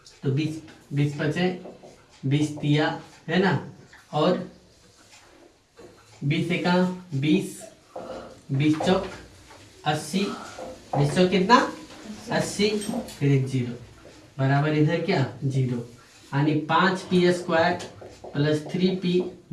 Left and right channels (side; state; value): both; identical; correlation 1.00